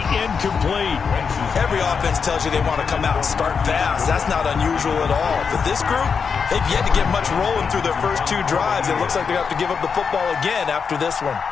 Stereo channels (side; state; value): right; quieter; 5.9 dB